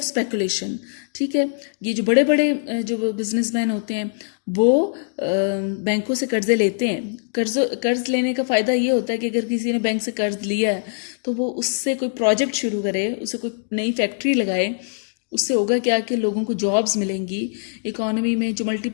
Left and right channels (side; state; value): right; silent; digital silence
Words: स्पेकुलेशन। ठीक है, ये जो बड़े बड़े जो बिजनेसमैन होते हैं वो बैंकों से कर्जे लेते हैं। कर्ज लेने का फ़ायदा ये होता है कि अगर किसी ने बैंक से कर्ज लिया है तो वो उससे कोई प्रोजेक्ट शुरू करे, उससे कोई नई फैक्ट्री लगाए, उससे होगा क्या कि लोगों को जॉब्स मिलेंगी, इकोनॉमी में जो